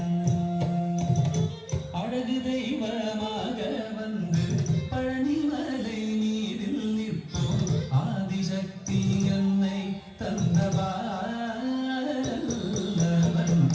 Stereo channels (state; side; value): identical; both; correlation 1.00